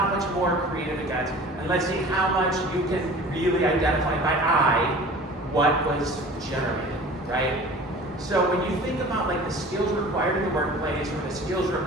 much more creative it gets. And let's see how much you can really identify by eye what was generated, right? So when you think about like the skills required in the workplace or the skills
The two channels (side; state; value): both; normal; correlation 0.42